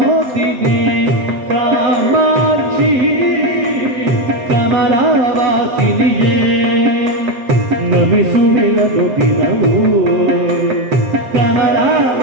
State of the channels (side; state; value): left; late; 7.6 ms